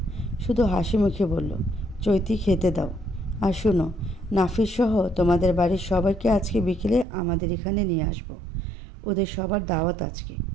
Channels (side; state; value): left; drops out; at 7.1 s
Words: শুধু হাসি মুখে বলল, চৈতি খেতে দাও। আর শুনো, নাফিস সহ তোমাদের বাড়ির সবাইকে আজকে বিকেলে আমাদের এখানে নিয়ে আসবো। ওদের সবার দাওয়াত আজকে।